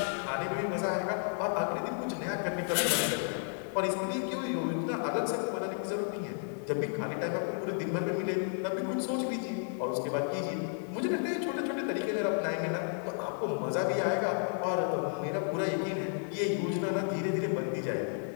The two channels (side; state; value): right; silent; 56 dB below the other